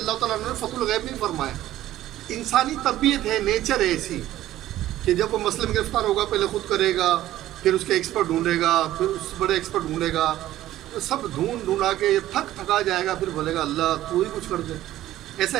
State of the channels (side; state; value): left; quieter; 14.1 dB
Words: تعالیٰ عنہ نے فتح الغیب میں فرمایا انسانی طبیعت ہے، نیچر ہے ایسی کہ جب وہ مسئلے میں گرفتار ہوگا پہلے خود کرے گا، پھر اس کے ایکسپرٹ ڈھونڈے گا، پھر اس بڑے ایکسپرٹ ڈھونڈے گا، سب ڈھونڈا کے تھکا جائے گا، پھر بولے گا اللہ تو ہی کچھ کر دے. ایسا